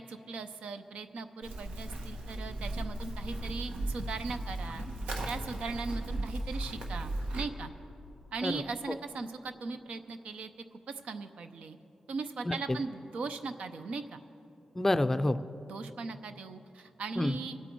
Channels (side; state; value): both; normal; correlation 0.88